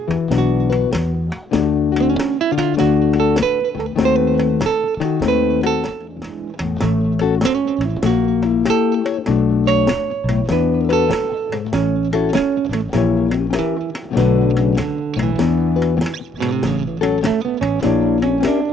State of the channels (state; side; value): normal; both; correlation 0.73